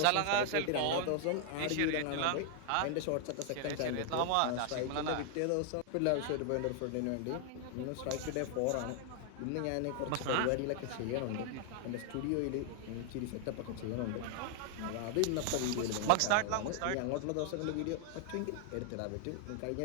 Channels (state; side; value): different; both; correlation 0.00